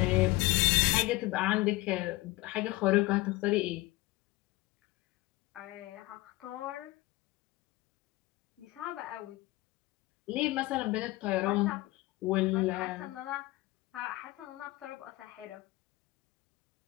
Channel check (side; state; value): right; quieter; 20.2 dB